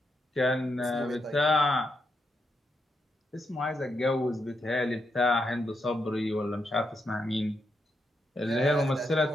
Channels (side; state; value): both; normal; correlation 0.82